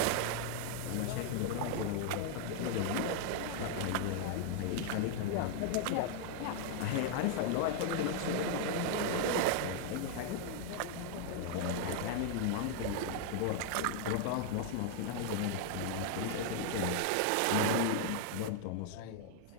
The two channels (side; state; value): both; different; correlation 0.00